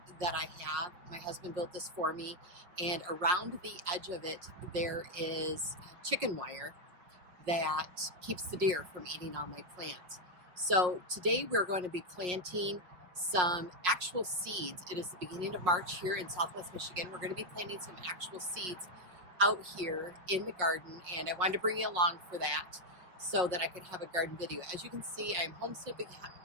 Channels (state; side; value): late; left; 5.6 ms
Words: that I have. My husband built this for me, and around the edge of it there is chicken wire that keeps the deer from eating all my plants. So today we're going to be planting some actual seeds. It is the beginning of March here in Southwest Michigan. We're going to be planting some actual seeds out here in the garden, and I wanted to bring you along for that so that I could have a garden video. As you can see, I am homestead